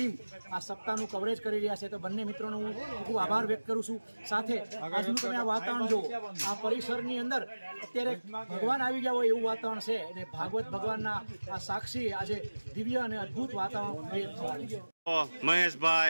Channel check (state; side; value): inverted; both; correlation -1.00